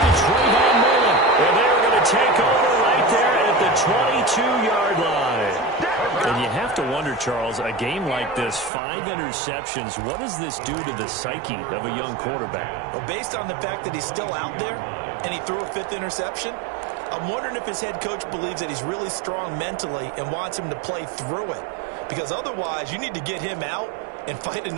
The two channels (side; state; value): left; drops out; at 8.7 s